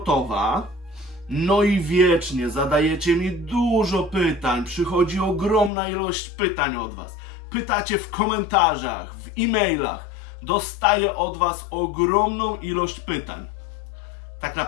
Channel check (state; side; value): drops out; right; at 5.7 s